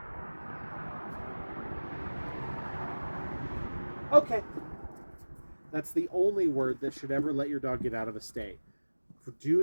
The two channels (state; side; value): inverted; both; correlation -1.00